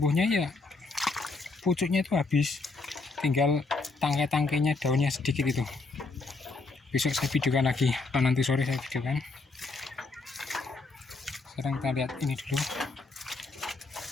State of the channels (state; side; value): quieter; right; 3.7 dB